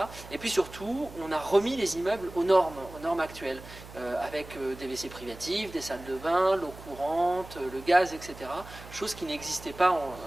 Et puis surtout, on a remis les immeubles aux normes actuelles, avec des WC privatifs, des salles de bain, l'eau courante, le gaz, etc. Chose qui n'existait pas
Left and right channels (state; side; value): noise; right; hum, 16 dB below the sound